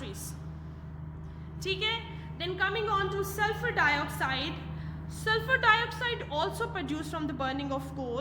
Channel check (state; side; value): identical; both; correlation 1.00